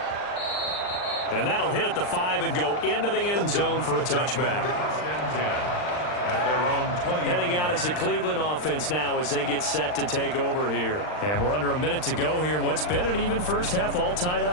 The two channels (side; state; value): right; late; 39 ms